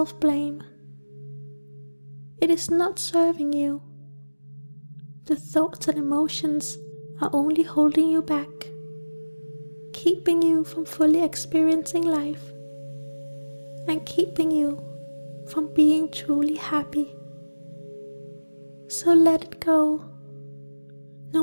It is not serving you. The thoughts and emotions are only holding you back, keeping you from fully experiencing life, and keeping you from being truly happy. So let it go, no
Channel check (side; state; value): both; inverted; correlation -1.00